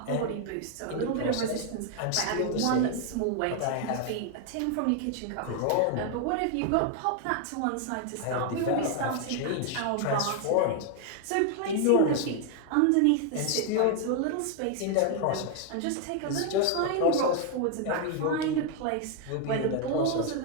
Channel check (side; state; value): both; different; correlation 0.00